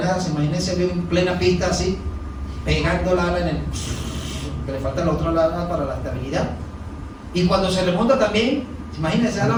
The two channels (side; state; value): both; identical; correlation 1.00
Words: nada. Se imagina ese avión en plena pista así, pegando la ala en el... que le falta la otra ala para la estabilidad. Y cuando se remonta también, imagínense